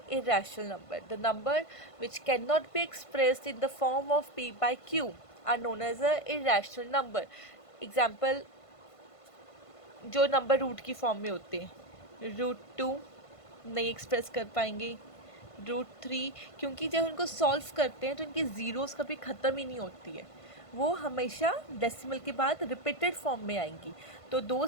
irrational number. The number which cannot be expressed in the form of p/q are known as a irrational number. Example, जो नंबर रूट की form में होते हैं, √2 नहीं एक्सप्रेस कर पाएंगे, √3 क्योंकि जब उनको सॉल्व करते हैं तो इनकी ज़ीरोज़ कभी ख़त्म ही नहीं होती है, वो हमेशा डेसिमल के बाद रिपीटेड फॉर्म में आएंगी। तो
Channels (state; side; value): late; right; 1.5 ms